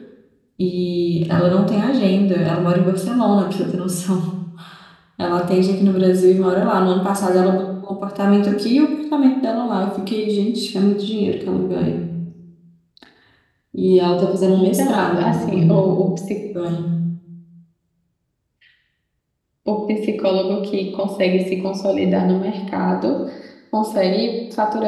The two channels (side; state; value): both; identical; correlation 1.00